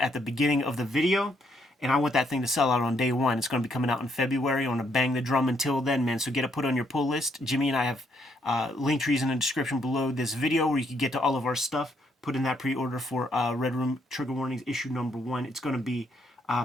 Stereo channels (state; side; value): normal; both; correlation 0.73